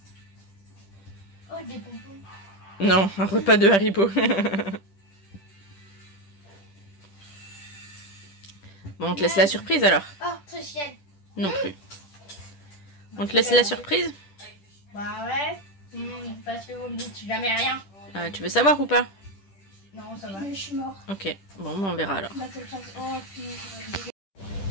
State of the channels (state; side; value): late; right; 10 ms